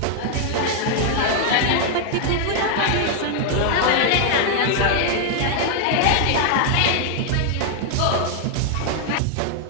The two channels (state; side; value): different; both; correlation 0.00